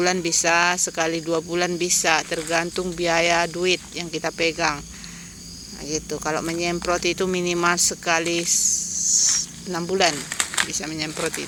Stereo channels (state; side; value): identical; both; correlation 1.00